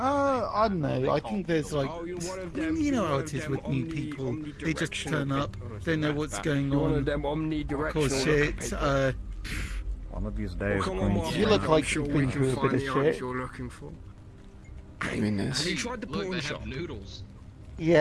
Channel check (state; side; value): identical; both; correlation 1.00